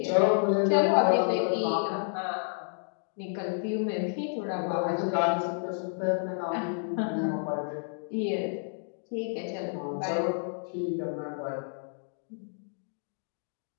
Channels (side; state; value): right; silent; digital silence